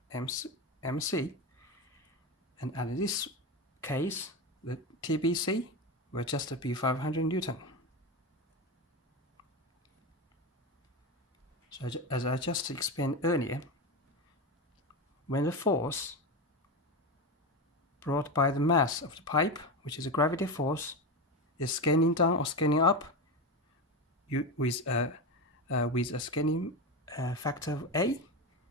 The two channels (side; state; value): both; normal; correlation 0.18